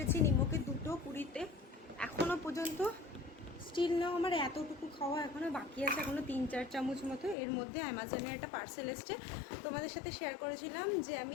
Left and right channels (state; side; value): drops out; right; at 7.4 s